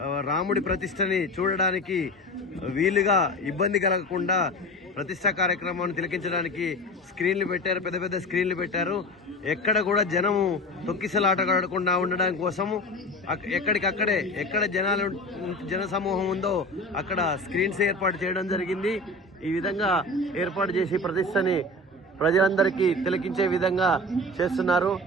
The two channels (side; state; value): both; normal; correlation 0.31